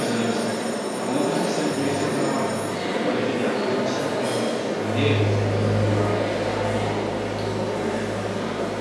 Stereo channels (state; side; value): identical; both; correlation 1.00